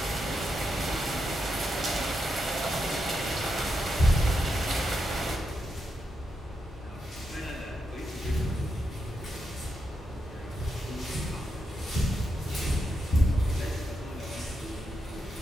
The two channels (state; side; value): normal; both; correlation 0.84